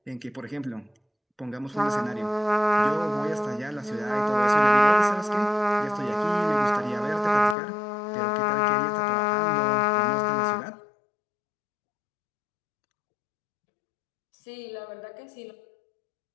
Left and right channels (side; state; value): right; drops out; at 7.6 s